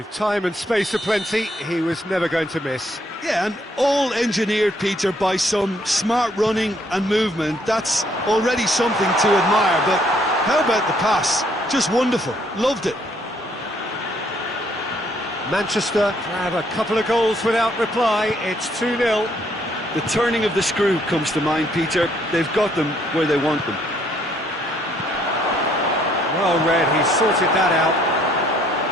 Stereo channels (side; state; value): both; normal; correlation 0.67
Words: time and space aplenty, he was never going to miss. Yeah, and all engineered, Peter, by some smart running and movement. That's already something to admire, but how about the pass? Just wonderful. Loved it. Manchester have a couple of goals without reply. It's 2-0. The turning of the screw comes to mind, Peter. They've got them where they want them. Well read, he sorted that out.